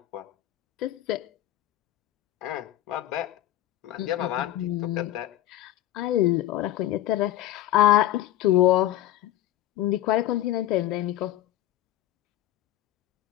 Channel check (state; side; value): quieter; right; 13.8 dB